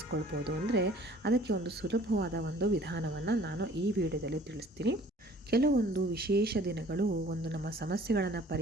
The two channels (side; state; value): both; normal; correlation 0.52